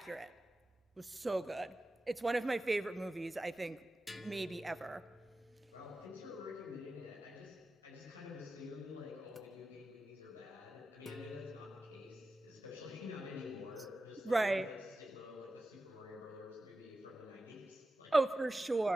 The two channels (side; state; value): both; normal; correlation 0.93